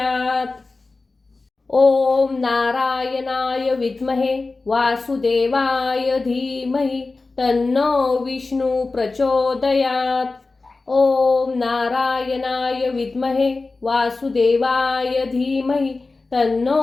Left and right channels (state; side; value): quieter; right; 3.6 dB